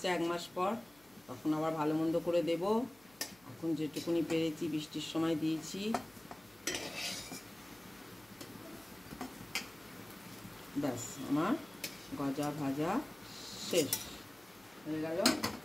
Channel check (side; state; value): left; noise; hum, 29 dB below the sound